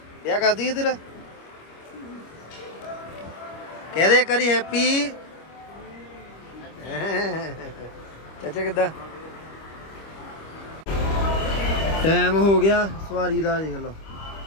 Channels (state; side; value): late; right; 25 ms